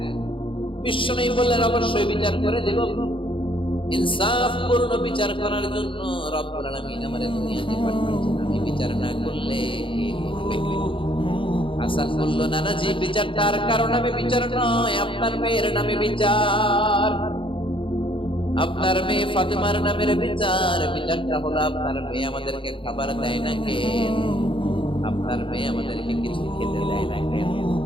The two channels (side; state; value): right; late; 0.25 ms